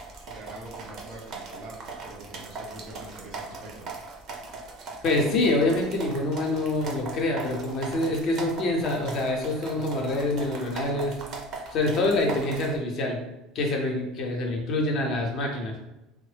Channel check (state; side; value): normal; both; correlation 0.35